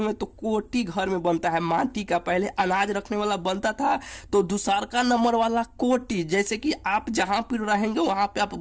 तो कोटी घर में बनता है माटी का, पहले अनाज रखने वाला बनता था, तो दूसरका नंबर वाला कोटी, जैसे कि आप जहां पर रहेंगे वहां पे आप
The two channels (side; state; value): both; identical; correlation 1.00